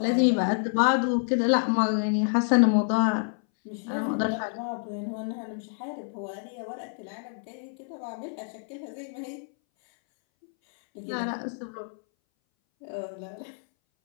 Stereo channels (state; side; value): silent; right; 59 dB below the other